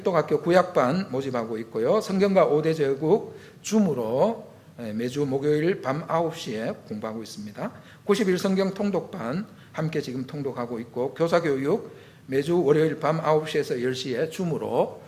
구약반 모집하고 있고요. 성경과 5대 제국 줌으로 매주 목요일 밤 9시에 공부하고 있습니다. 90일 성경 통독반 함께 지금 통독하고 있고 교사교육 매주 월요일 밤 9시에서 10시에 줌으로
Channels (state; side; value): identical; both; correlation 1.00